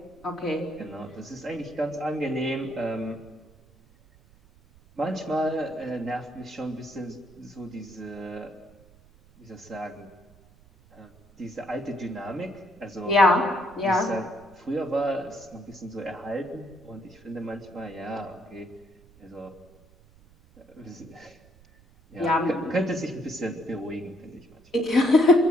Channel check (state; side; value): noise; right; rumble, 26 dB below the sound